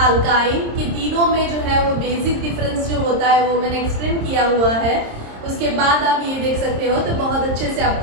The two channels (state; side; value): late; left; 26 ms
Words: कि तीनों में जो है वो बेसिक डिफरेंस जो होता है वो मैंने एक्सप्लेन किया हुआ है। उसके बाद आप ये देख सकते हो तो बहुत अच्छे से